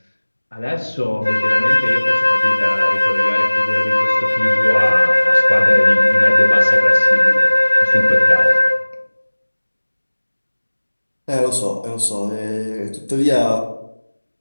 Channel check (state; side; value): inverted; both; correlation -1.00